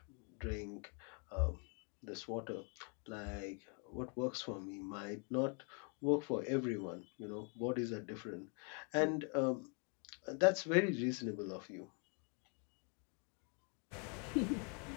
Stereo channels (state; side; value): quieter; right; 37.6 dB